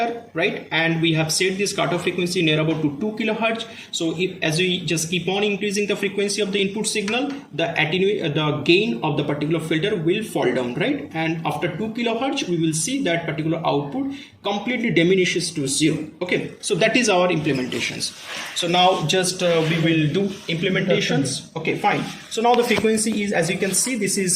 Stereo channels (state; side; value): identical; both; correlation 1.00